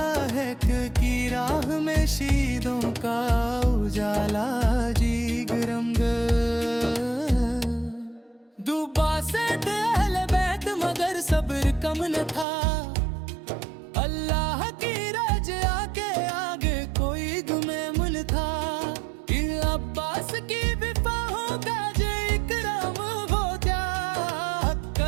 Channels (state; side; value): drops out; left; at 12.5 s